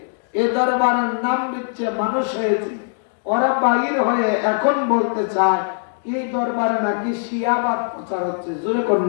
এই দরবারের নাম বিচ্ছে মানুষ হয়েছে, ওরা বাহির হয়ে এখন বলতে চায় এই দরবারে নাকি শিয়াবাদ প্রচার হচ্ছে। জোরে কোন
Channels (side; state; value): right; silent; digital silence